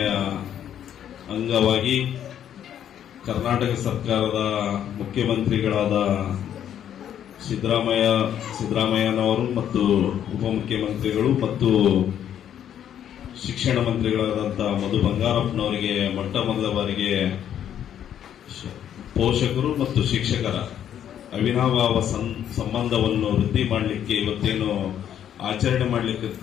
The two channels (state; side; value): quieter; right; 9.9 dB